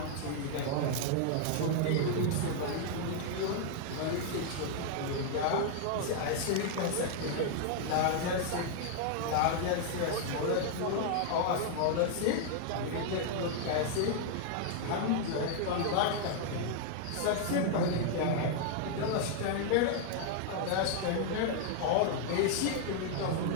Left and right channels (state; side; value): different; both; correlation 0.00